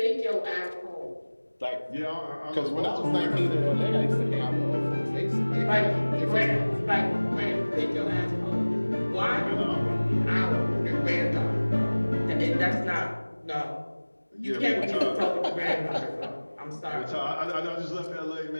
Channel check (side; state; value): both; inverted; correlation -1.00